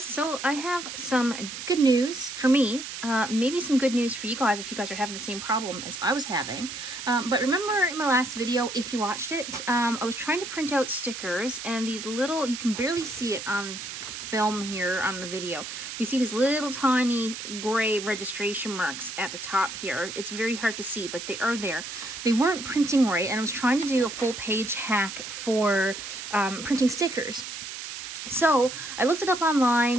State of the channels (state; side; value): noise; right; hiss, 8 dB below the sound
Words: so I have some good news for me, maybe some good news for you guys if you guys are having the same problem as I was having. But remember in my last video, if you watched it, I was trying to print out stickers, and these little, you can barely see it on film here on the video. You see these little tiny gray registration marks at the top here. It's very hard to see, but they are there. They weren't printing right, and I was trying to do a full page hack for printing stickers. So I looked it up